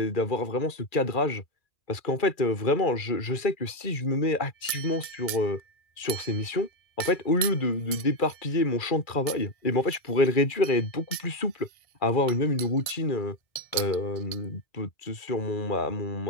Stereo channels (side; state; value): right; late; 1.7 ms